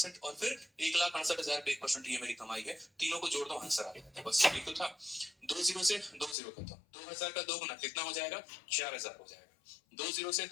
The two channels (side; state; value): right; drops out; at 6.4 s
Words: और फिर 1,68,000 पे 1%, ये मेरी कमाई है। तीनों को जोड़ दो आंसर आ जाता है, बस यही तो था। 2 जीरो से 2 जीरो खत्म, 2,000 का 2 गुना कितना हो जाएगा, 4,000 हो जाएगा। 2 जीरो से